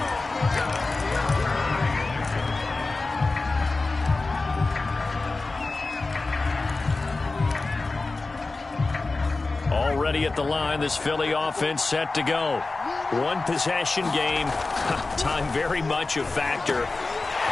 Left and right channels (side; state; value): right; quieter; 3.5 dB